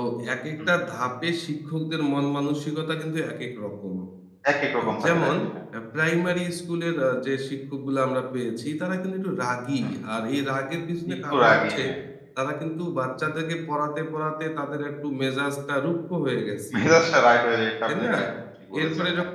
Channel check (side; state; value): both; identical; correlation 1.00